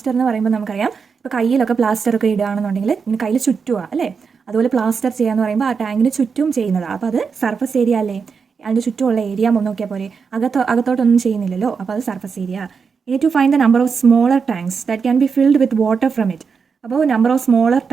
എന്ന് പറയുമ്പോൾ നമുക്കറിയാം, ഇപ്പോൾ കയ്യിലൊക്കെ പ്ലാസ്റ്റർ ഒക്കെ ഇടുകയാണെന്നുണ്ടെങ്കിൽ ഇങ്ങനെ കയ്യിൽ ചുറ്റുക അല്ലേ, അതുപോലെ പ്ലാസ്റ്റർ ചെയ്യാന്ന് പറയുമ്പോൾ ആ ടാങ്കിന് ചുറ്റും ചെയ്യുന്നതാണ്. അപ്പോൾ അത് സർഫസ് ഏരിയ അല്ലേ, അതിൻ്റെ ചുറ്റുമുള്ള ഏരിയ നോക്കിയാൽ പോലെ, അകത്തോട്ടൊന്നും ചെയ്യുന്നില്ലല്ലോ, അപ്പോൾ അത് surface area. You need to find the number of smaller tanks that can be filled with water from it. അപ്പോൾ number of smaller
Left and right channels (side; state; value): left; quieter; 5.7 dB